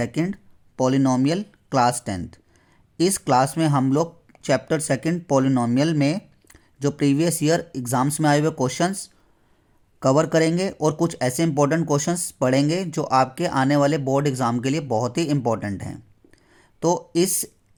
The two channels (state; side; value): identical; both; correlation 1.00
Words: polynomial class 10th। इस क्लास में हम लोग चैप्टर सेकंड पॉलिनोमियल में जो प्रीवियस ईयर एग्ज़ाम्स में आए हुए क्वेश्चंस कवर करेंगे और कुछ ऐसे इंपॉर्टेंट क्वेश्चंस पढ़ेंगे जो आपके आने वाले बोर्ड एग्ज़ाम के लिए बहुत ही इंपॉर्टेंट हैं। तो इस